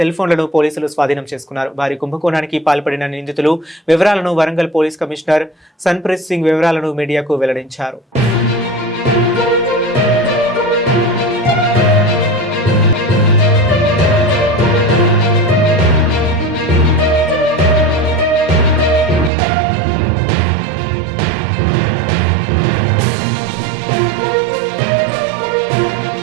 ఫోన్లను పోలీసులు స్వాధీనం చేసుకున్నారు. వారి కుంభకోణానికి పాల్పడిన నిందితులు వివరాలను వరంగల్ పోలీస్ కమిషనర్ సన్ప్రీత్ సింగ్ వివరాలను మీడియాకు వెల్లడించారు.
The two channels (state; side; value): drops out; left; at 19.3 s